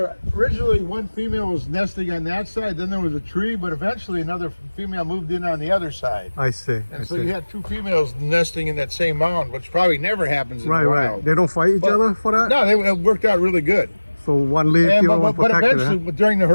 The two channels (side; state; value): both; inverted; correlation -1.00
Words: originally one female was nesting on that side, then there was a tree, but eventually another female moved in on the other side. I see. And so you had 2 females nesting in that same mound, which probably never happens in the wild. Right. They don't fight each other for that? No, it worked out really good. So one leave the other one But protected, eventually, during the